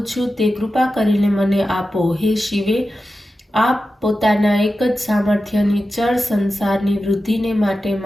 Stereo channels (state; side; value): normal; both; correlation 0.92